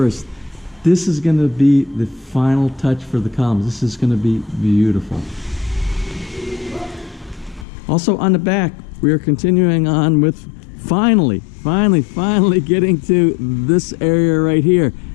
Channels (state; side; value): drops out; right; at 7.7 s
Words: This is going to be the final touch for the columns. This is going to be beautiful. Also on the back, we are continuing on with finally getting to this area right here.